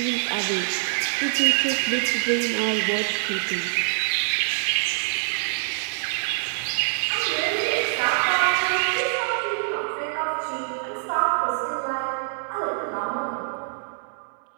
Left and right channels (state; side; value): silent; left; 62 dB below the other